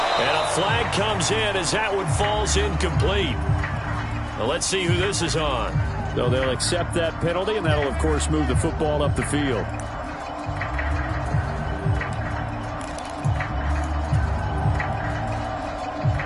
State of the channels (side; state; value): both; identical; correlation 1.00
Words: a flag comes in as that one falls incomplete. Well, let's see who this is on. So they'll accept that penalty, and that'll, of course, move the football up the field.